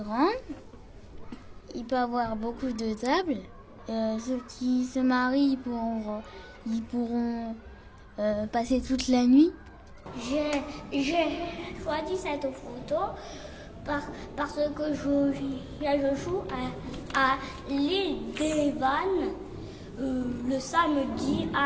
Il peut y avoir beaucoup de tables. Ceux qui se marient, ils pourront passer toute la nuit. J'ai choisi cette photo parce que je joue à l'île des Vannes le samedi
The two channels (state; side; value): identical; both; correlation 1.00